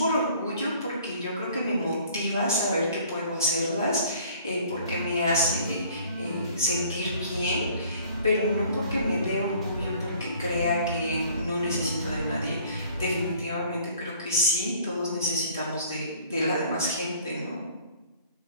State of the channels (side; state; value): both; inverted; correlation -0.54